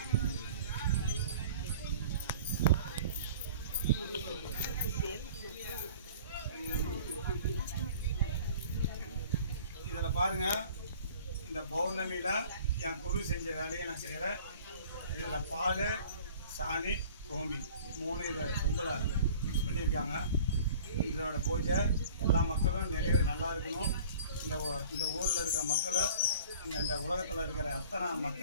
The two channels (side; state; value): both; inverted; correlation -0.46